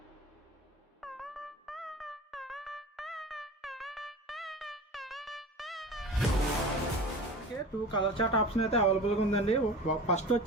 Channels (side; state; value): both; normal; correlation 0.34